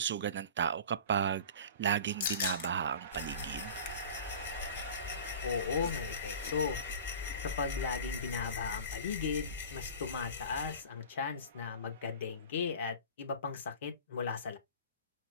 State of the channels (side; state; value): both; inverted; correlation -0.38